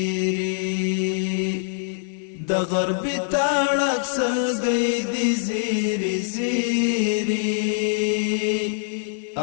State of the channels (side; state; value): right; silent; 63 dB below the other